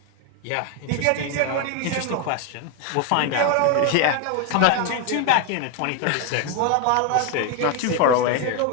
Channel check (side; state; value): both; different; correlation 0.01